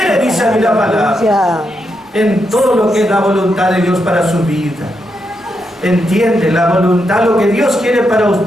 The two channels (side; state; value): both; normal; correlation 0.83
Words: dice a mí la palabra. Aleluya. En todo lo que es la voluntad de Dios para su vida. Entiende, la voluntad, lo que Dios quiere para